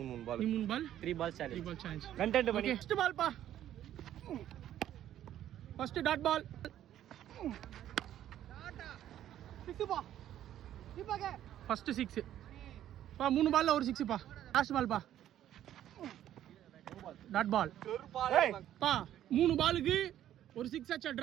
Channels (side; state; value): left; quieter; 11.7 dB